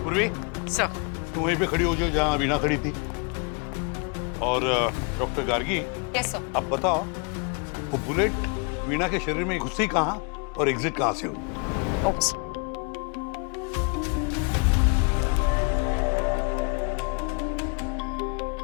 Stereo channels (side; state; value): right; quieter; 35.1 dB